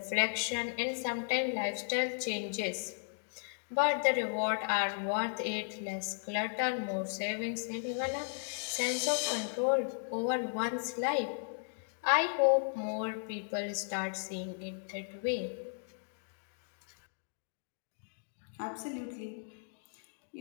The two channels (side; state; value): right; silent; digital silence